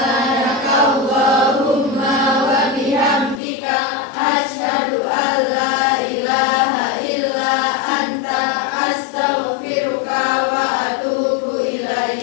wa bihamdika asyhadu an la ilaha illa anta astaghfiruka wa atubu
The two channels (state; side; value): drops out; right; at 3.4 s